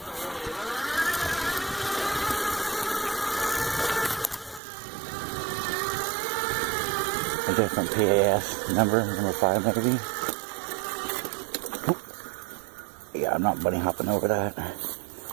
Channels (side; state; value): left; drops out; at 4.6 s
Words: different PAS number 5 maybe. Oop. Yeah, I'm not bunny hopping over that.